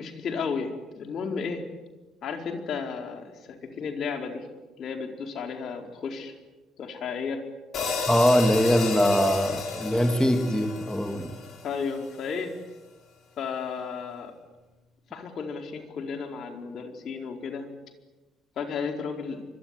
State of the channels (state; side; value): normal; both; correlation 0.87